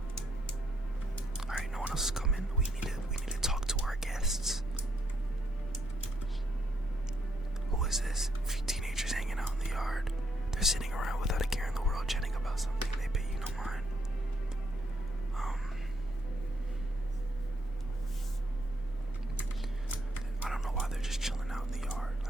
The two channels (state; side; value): normal; both; correlation 0.75